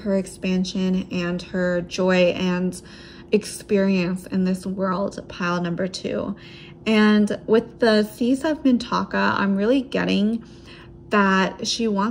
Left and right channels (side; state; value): both; identical; correlation 1.00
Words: expansion and her joy and experience in this world, pile number 2. And with the Seas of Mintaka, I'm really getting that she